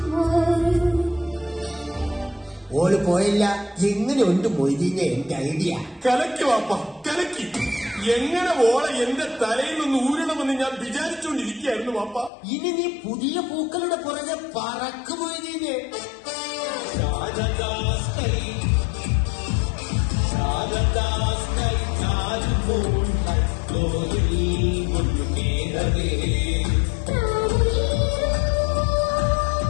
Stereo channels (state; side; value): drops out; right; at 12.3 s